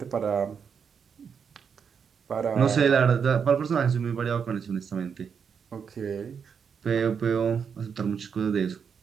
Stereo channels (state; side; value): quieter; left; 6.7 dB